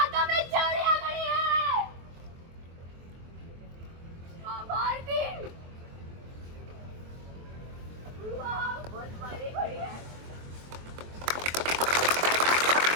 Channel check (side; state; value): left; late; 23 ms